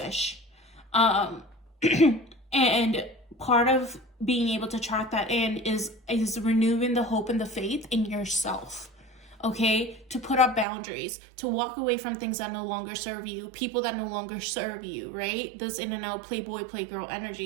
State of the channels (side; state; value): left; drops out; at 10.7 s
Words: And part of being able to track that in is renewing the hope and the faith in yourself, okay? To put up boundaries, to walk away from things that no longer serve you, people that no longer serve you, right? This in and out playboy, playgirl